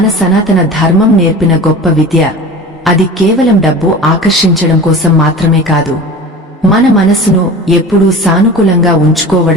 సనాతన ధర్మం నేర్పిన గొప్ప విద్య. అది కేవలం డబ్బు ఆకర్షించడం కోసం మాత్రమే కాదు, మన మనసును ఎప్పుడూ సానుకూలంగా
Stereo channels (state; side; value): normal; both; correlation 0.36